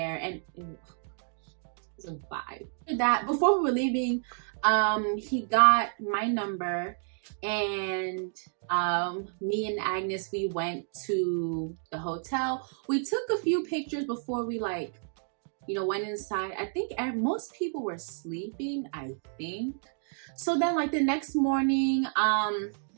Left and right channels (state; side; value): silent; left; 56 dB below the other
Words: and it was a vibe. That before we were leaving, he got my number, and me and Agnes, we went to the hotel. We took a few pictures before we, like, you know, went inside. I think most people were sleeping, I think. So then, like, the next morning,